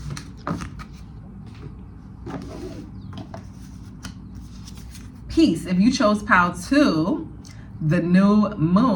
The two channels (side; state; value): both; identical; correlation 1.00